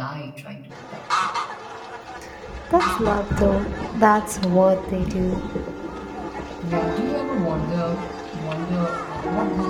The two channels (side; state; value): both; identical; correlation 1.00